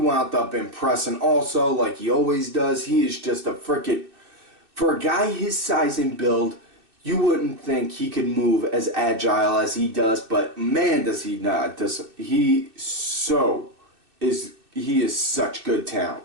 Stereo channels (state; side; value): late; left; 2.6 ms